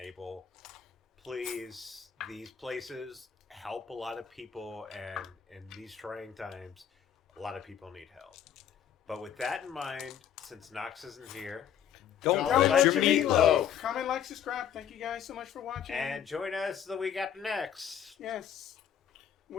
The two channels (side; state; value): right; quieter; 9.1 dB